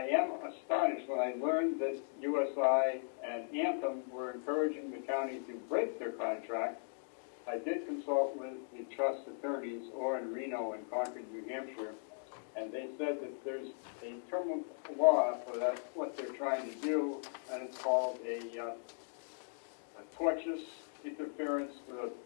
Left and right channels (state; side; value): silent; right; digital silence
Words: am astonished when I learned that USI and Anthem were encouraging the county to break their contract. I did consult with the trust attorneys, or in Reno and Concord, New Hampshire, and they said that there's a term of law for that, what they're trying to do, and it's called a tortious interference with a